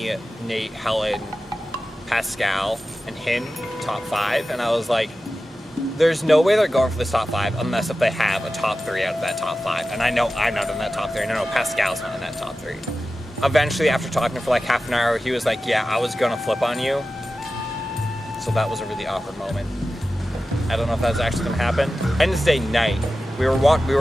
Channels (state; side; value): normal; both; correlation 0.94